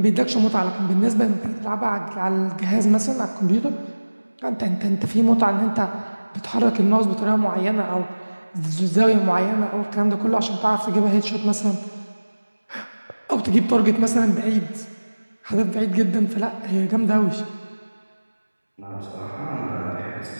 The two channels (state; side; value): inverted; both; correlation -1.00